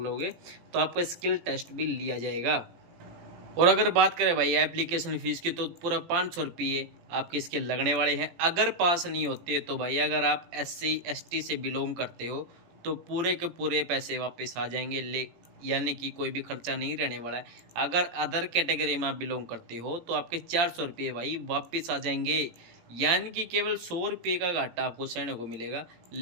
तो आपका स्किल टेस्ट भी लिया जाएगा। और अगर बात करें भाई एप्लीकेशन फ़ीस की, तो पूरा 500 रुपये आपके इसके लगने वाले हैं। अगर पास नहीं होते तो भाई अगर आप SC ST से बिलोंग करते हो तो पूरे के पूरे पैसे वापस आ जाएंगे, यानी कि कोई भी खर्चा नहीं रहने वाला है। अगर अदर कैटेगरी में आप बिलोंग करते हो तो आपके 400 रुपये भाई वापस आ जाएंगे, यानी कि केवल 100 रुपये का घाटा आपको सहने को मिलेगा।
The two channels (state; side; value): late; left; 18 ms